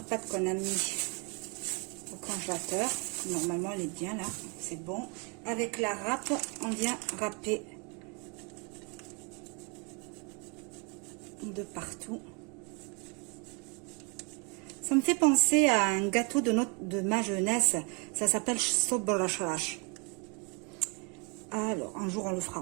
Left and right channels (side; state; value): left; quieter; 33.7 dB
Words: pâte qu'on a mis au congélateur. Normalement, elle est bien là, c'est bon. Avec la râpe, on vient râper de partout. Ça me fait penser à un gâteau de ma jeunesse. Ça s'appelle Sobrachalash. Alors, un jour, on le fera